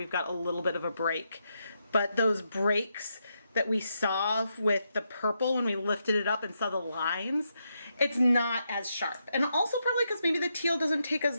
got a little bit of a break, but those breaks that we saw with the purple when we lifted it up and saw the lines, it's not as sharp. And also probably because maybe the teal doesn't take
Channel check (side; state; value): both; inverted; correlation -0.82